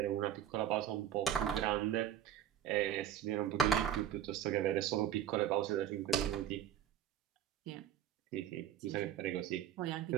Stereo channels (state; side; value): quieter; left; 10.4 dB